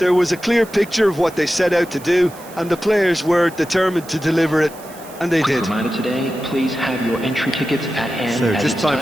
was a clear picture of what they set out to do, and the players were determined to deliver it. And they did. Reminder today, please have your entry tickets at hand. So just time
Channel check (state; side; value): noise; right; hiss, 20 dB below the sound